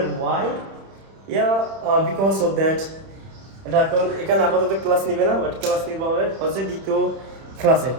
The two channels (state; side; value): late; left; 31 ms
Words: ওয়াই বিকজ অফ দ্যাট এটা এখন এখানে আপাতত ক্লাস নিবে না, বাট ক্লাস নিতে হবে হচ্ছে দ্বিতীয় ক্লাসে।